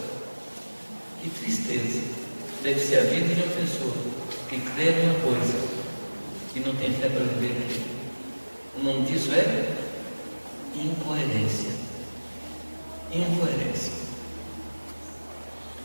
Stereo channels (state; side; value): inverted; both; correlation -1.00